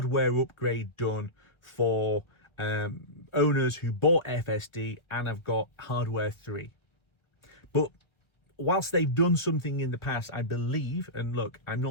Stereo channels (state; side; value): late; right; 1.1 ms